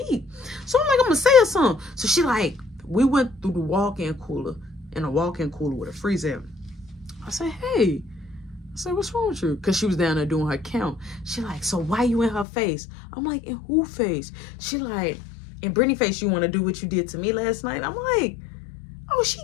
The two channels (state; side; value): drops out; right; at 12.5 s